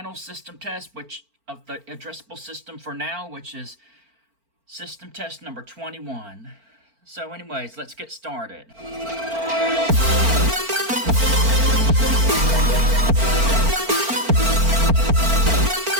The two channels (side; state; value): left; late; 4.4 ms